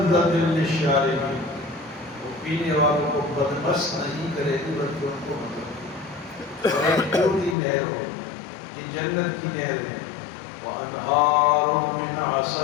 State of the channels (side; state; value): right; drops out; at 7.6 s